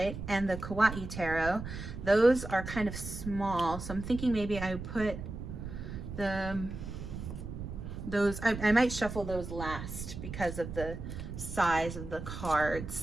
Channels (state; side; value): noise; right; rumble, 8 dB below the sound